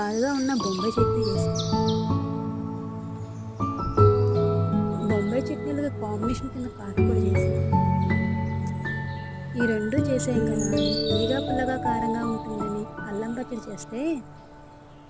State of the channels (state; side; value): identical; both; correlation 1.00